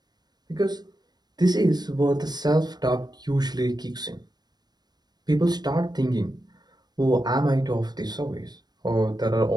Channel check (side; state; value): left; late; 0.20 ms